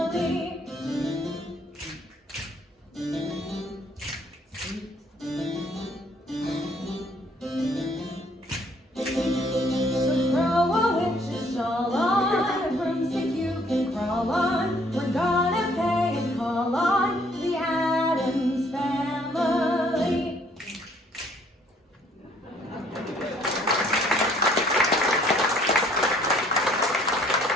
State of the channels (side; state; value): both; normal; correlation 0.62